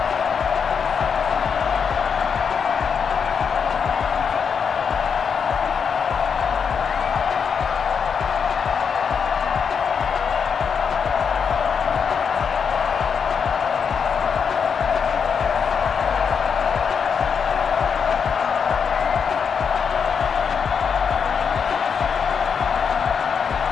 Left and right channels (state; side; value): quieter; right; 6.5 dB